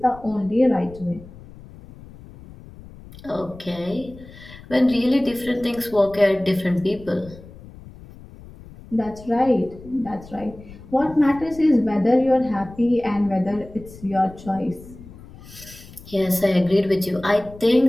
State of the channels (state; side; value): noise; left; rumble, 19 dB below the sound